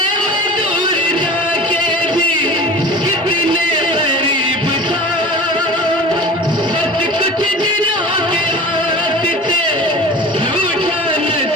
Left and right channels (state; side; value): normal; both; correlation 0.37